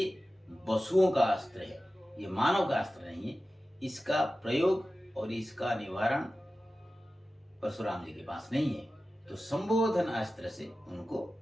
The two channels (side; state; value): both; normal; correlation 0.95